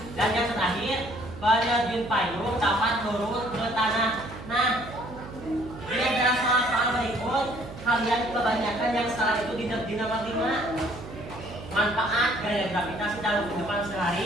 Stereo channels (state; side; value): noise; right; hum, 14 dB below the sound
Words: Dan yang terakhir, penerjun payung dapat turun ke tanah. Nah, ini adalah soal-soal berikut. Kalian kebanyakan yang salah itu di nomor 5. Manfaat gaya gravitasi dalam kehidupan